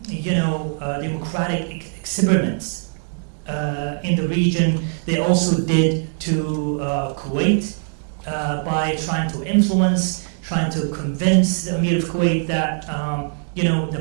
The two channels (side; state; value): left; silent; 60 dB below the other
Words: democratic experiments in the region, they also did to Kuwait by trying to influence, trying to convince the Emir of Kuwait that the